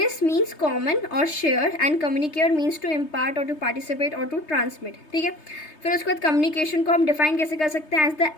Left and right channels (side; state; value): right; late; 3.3 ms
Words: means common और share and communicare means to impart और टू पार्टिसिपेट और टू ट्रांसमिट, ठीक है। फिर उसके बाद कम्युनिकेशन को हम डिफाइन कैसे कर सकते हैं, एज द